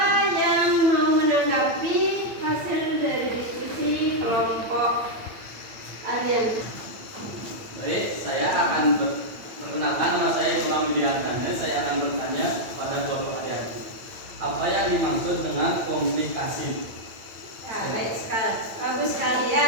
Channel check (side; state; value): left; late; 8.8 ms